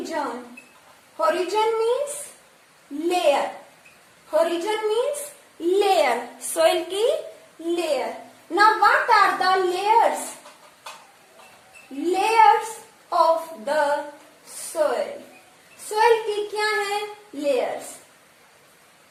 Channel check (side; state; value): both; identical; correlation 1.00